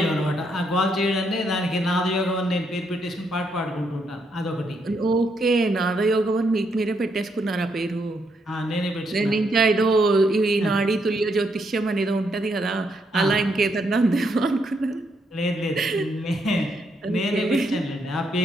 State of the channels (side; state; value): both; normal; correlation 0.77